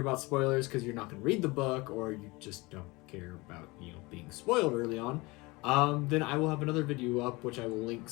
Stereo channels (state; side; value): quieter; right; 23.8 dB